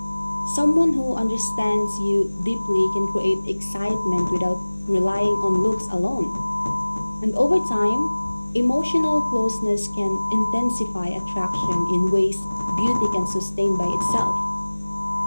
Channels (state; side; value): inverted; both; correlation -1.00